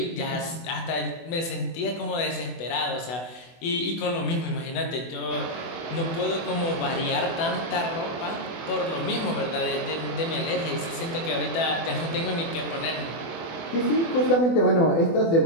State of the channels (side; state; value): right; late; 24 ms